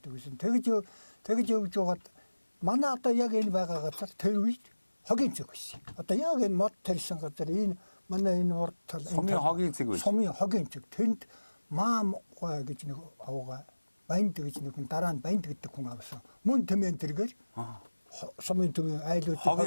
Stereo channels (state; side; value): inverted; both; correlation -1.00